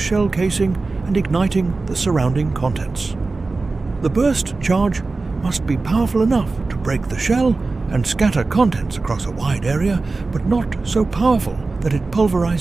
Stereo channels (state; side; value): quieter; left; 3.7 dB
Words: casing and igniting the surrounding contents. The burst charge must be powerful enough to break the shell and scatter contents across a wide area, but not so powerful that it